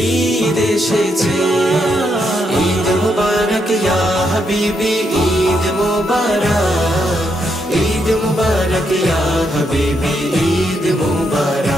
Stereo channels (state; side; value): normal; both; correlation 0.78